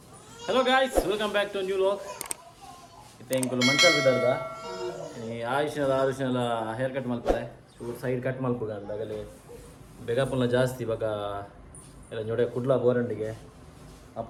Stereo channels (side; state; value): both; identical; correlation 1.00